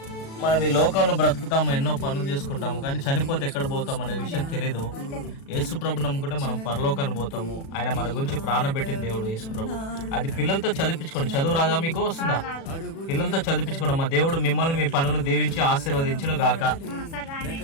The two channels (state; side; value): late; right; 36 ms